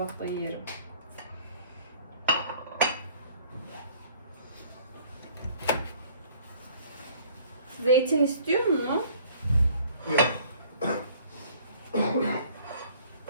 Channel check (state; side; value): inverted; both; correlation -0.55